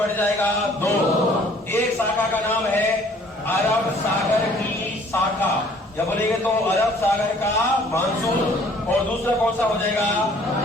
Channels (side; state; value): both; normal; correlation 0.56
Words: जाएगा? 2। एक शाखा का नाम है अरब सागर की शाखा, जब बोलेंगे तो अरब सागर का मानसून। और दूसरा कौन सा हो जाएगा?